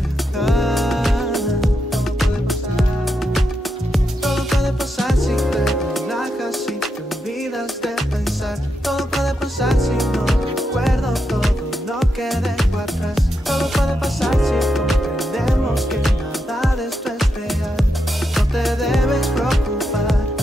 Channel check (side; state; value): both; normal; correlation 0.84